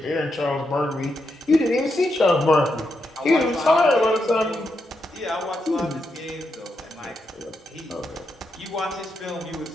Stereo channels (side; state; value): both; normal; correlation 0.83